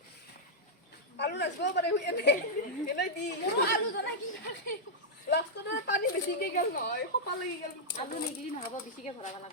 আলু নাচবো পারে হুই এনে দি আলু জানা কি লাষ্টত পানী বেছিকে গেল নহয় খপা লাগি গেল আলু নিগলি নহব বেছিকে ভৰাব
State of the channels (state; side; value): normal; both; correlation -0.06